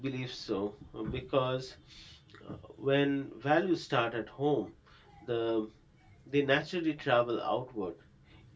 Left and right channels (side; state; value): both; identical; correlation 1.00